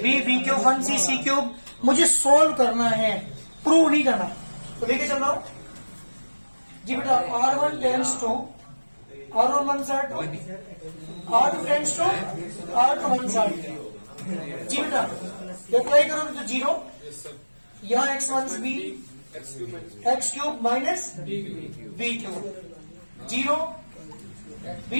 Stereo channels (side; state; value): both; inverted; correlation -1.00